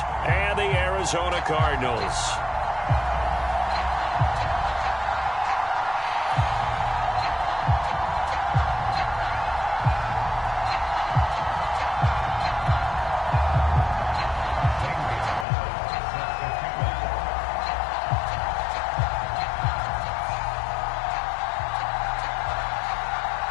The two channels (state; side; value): drops out; right; at 15.5 s